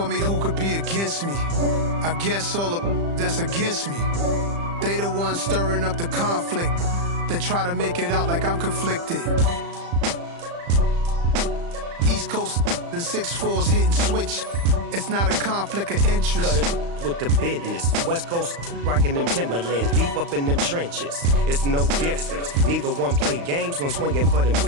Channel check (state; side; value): late; left; 35 ms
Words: me, who could be against me? I guess all of that's against me. They the ones stirring up the conflict. They try to make it out like I'm conflicted. East Coast and 6'4's hitting switch. It's not a conflict of interest. Cut it with the business. West Coast rocking them Timberlands, deep up in them trenches. It's no difference. Neither one play games when swinging for them